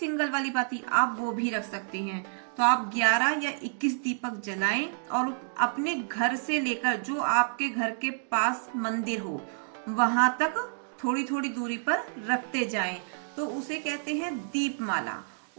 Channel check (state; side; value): silent; left; digital silence